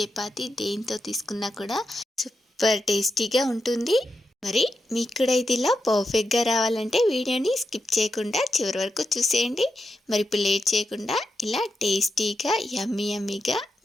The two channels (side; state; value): both; normal; correlation 0.87